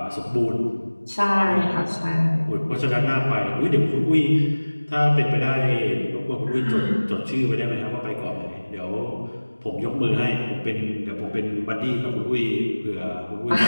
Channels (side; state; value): both; inverted; correlation -1.00